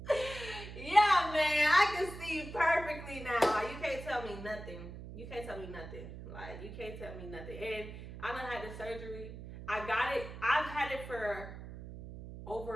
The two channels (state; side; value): noise; right; hum, 11 dB below the sound